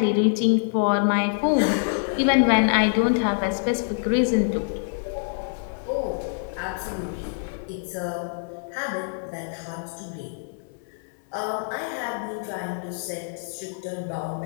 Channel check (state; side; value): silent; right; 61 dB below the other